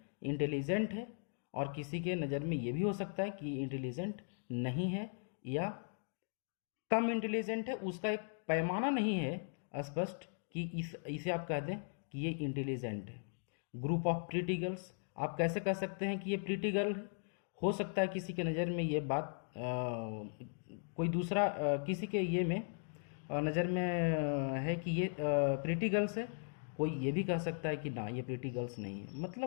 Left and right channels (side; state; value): right; silent; digital silence